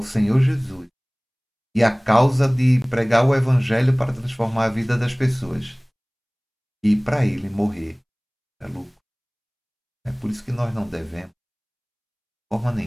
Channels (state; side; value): identical; both; correlation 1.00